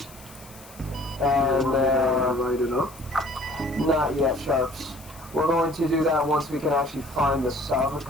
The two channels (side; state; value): left; noise; hiss, 21 dB below the sound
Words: And Light it up. not yet, Sharps. We're going to do that once we can actually find the sub,